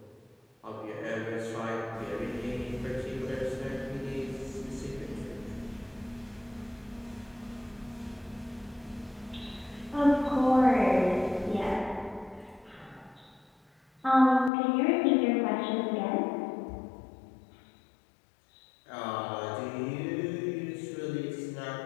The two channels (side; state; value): right; drops out; at 14.5 s